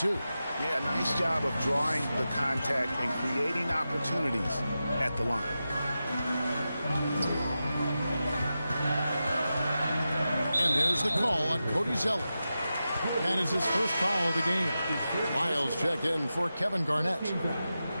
Yeah, nice job of drawing the contact and creating opportunities at the line. And there's the call on Cody Zeller. That is his first foul of the game. Lyles checked in for Kevin Garnett.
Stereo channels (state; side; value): inverted; both; correlation -0.92